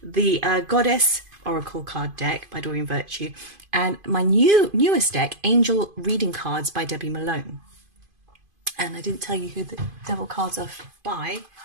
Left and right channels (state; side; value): late; left; 2.5 ms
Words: The Goddess Oracle card deck by Doreen Virtue. And my newest deck, Angel Reading Cards by Debbie Malone. And I didn't tell you who the devil cards are by.